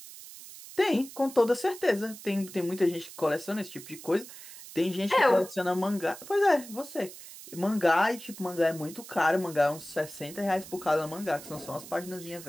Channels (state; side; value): noise; right; hiss, 15 dB below the sound